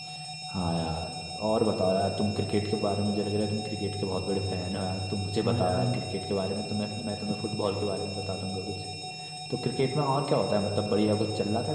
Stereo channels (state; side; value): identical; both; correlation 1.00